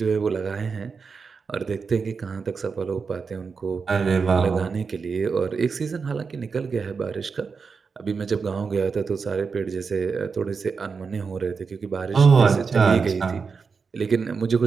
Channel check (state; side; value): quieter; left; 5.2 dB